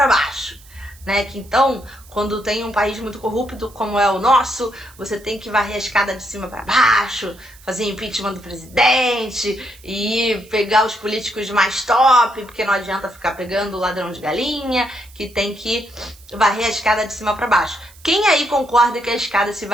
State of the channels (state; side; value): noise; right; hiss, 24 dB below the sound